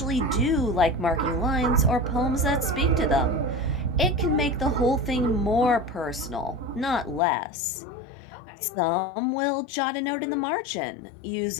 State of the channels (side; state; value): right; drops out; at 7.2 s